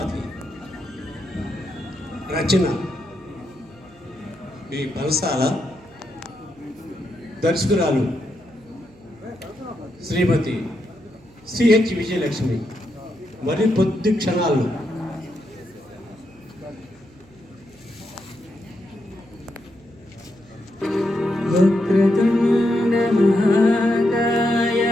రచన ఈ బలసాల. దర్శకురాలు శ్రీమతి సిహెచ్ విజయలక్ష్మి. మరి కొద్ది క్షణాల్లో వక్రతుండ మహాకాయ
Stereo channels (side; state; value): right; noise; hum, 27 dB below the sound